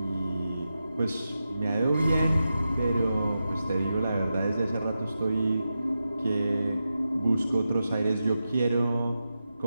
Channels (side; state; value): both; inverted; correlation -0.90